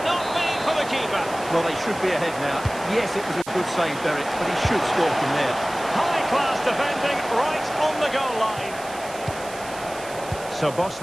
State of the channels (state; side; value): noise; right; hiss, 16 dB below the sound